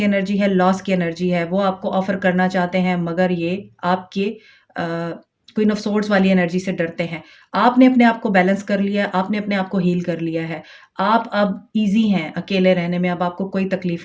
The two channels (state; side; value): identical; both; correlation 1.00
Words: एनर्जी है, लॉस की एनर्जी है। वो आपको ऑफ़र करना चाहते हैं मगर ये आपके क्वीन ऑफ सोर्ड्स वाली एनर्जी से डरते हैं। आपने अपने आप को बैलेंस कर लिया है, आपने अपने आप को हील कर लिया है। आप अब ईज़ी हैं अकेले रहने में, अब आपको कोई